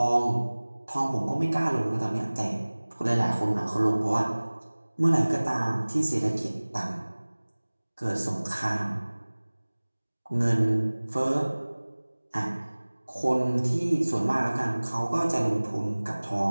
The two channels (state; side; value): inverted; both; correlation -1.00